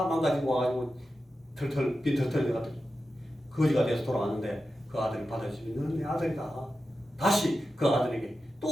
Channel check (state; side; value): normal; both; correlation 0.91